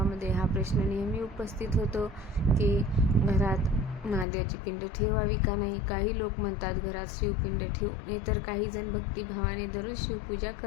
हा प्रश्न नेहमी उपस्थित होतो की घरात महादेवाची पिंड ठेवावी का नाही. काही लोक म्हणतात घरात शिवपिंड ठेवू नये, तर काही जण भक्तिभावाने दररोज शिवपूजा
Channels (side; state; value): right; drops out; at 4.2 s